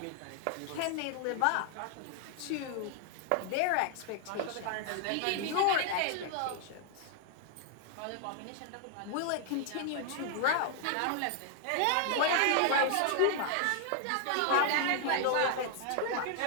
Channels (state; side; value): different; both; correlation 0.00